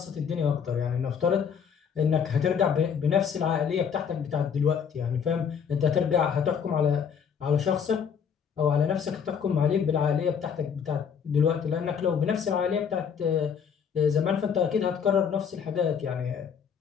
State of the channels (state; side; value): quieter; right; 7.1 dB